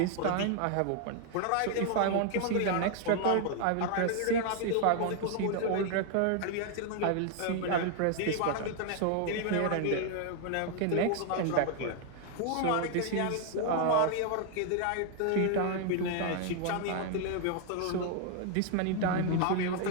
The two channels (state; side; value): different; both; correlation 0.00